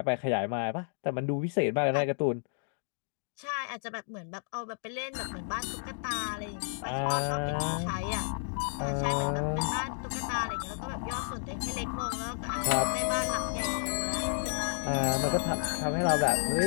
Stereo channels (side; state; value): right; silent; digital silence